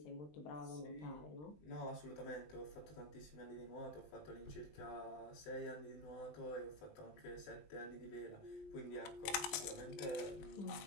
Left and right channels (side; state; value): right; late; 20 ms